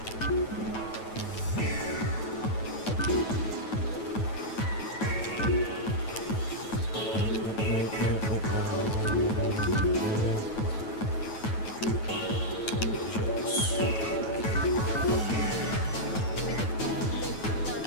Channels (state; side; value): late; right; 9.2 ms